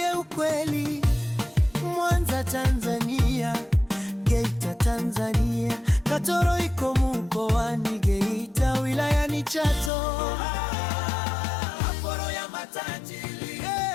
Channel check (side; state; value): right; drops out; at 9.9 s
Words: ukweli, Mwanza Tanzania, Geita Tanzania, Katoro iko mkoani Geita, wilayani Chato. Aporo ya matajiri,